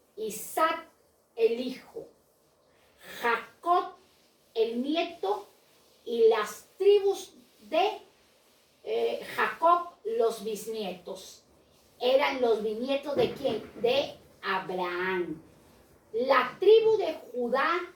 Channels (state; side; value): identical; both; correlation 1.00